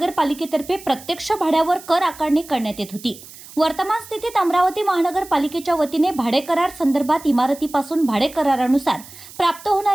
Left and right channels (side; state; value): right; noise; hiss, 18 dB below the sound